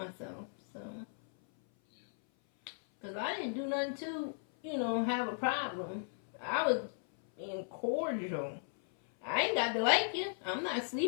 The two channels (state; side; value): silent; right; 54 dB below the other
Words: So, because I didn't do nothing to, you know, have a problem. I was being cordial. I ain't got to like you. I'm not